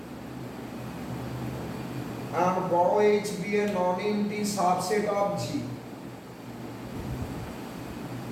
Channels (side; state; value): both; identical; correlation 1.00